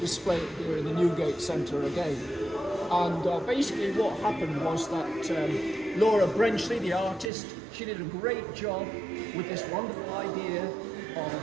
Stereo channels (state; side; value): drops out; left; at 7.3 s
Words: it here in the Newgate Centre again. And basically what happened was that Laura Brenchley, the artist, she did a great job with this wonderful idea